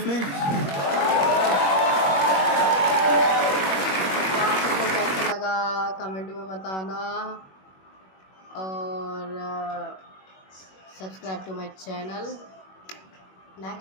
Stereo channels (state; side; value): late; right; 21 ms